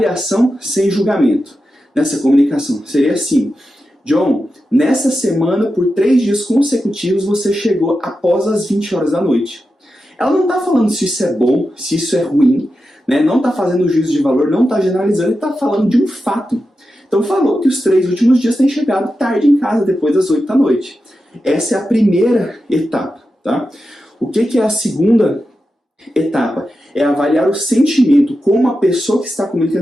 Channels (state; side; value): normal; both; correlation 0.90